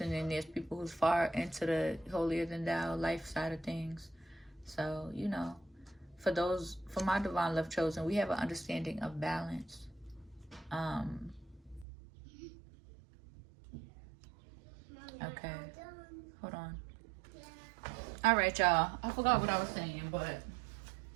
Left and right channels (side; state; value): left; drops out; at 11.9 s